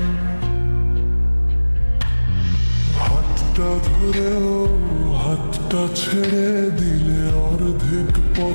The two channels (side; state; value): both; inverted; correlation -1.00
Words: হাতটা ধরেও হাতটা ছেড়ে দিলে অর্ধেক